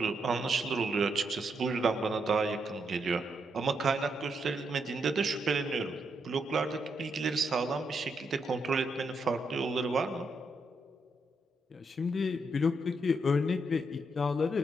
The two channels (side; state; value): both; normal; correlation 0.80